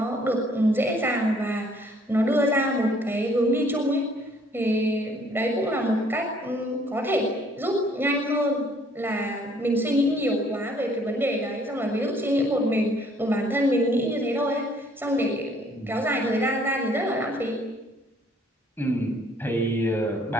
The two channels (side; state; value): both; normal; correlation 0.61